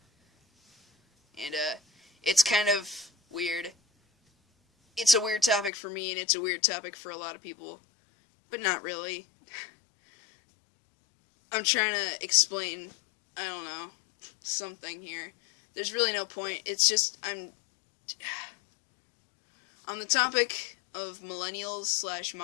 and it's kind of weird. It's a weird topic for me, and it's a weird topic for a lot of people, but not really. I'm trying to explain, I don't know, something here. There's really no point, it's just, on the topic of millennials slash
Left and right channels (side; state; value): right; drops out; at 5.7 s